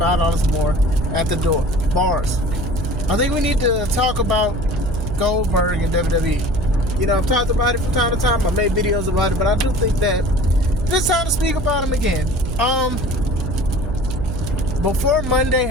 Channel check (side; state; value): right; noise; hum, 5 dB below the sound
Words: more at the door. Bars. I think we need to talk about Goldberg and WWE. You know, I've talked about it from time to time. I made videos about it, but I do think that it's time to speak about him again. Before Monday